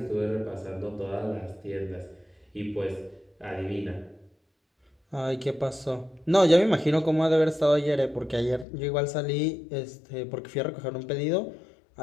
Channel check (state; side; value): drops out; right; at 8.7 s